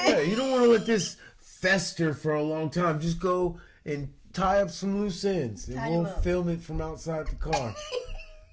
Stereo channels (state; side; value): identical; both; correlation 1.00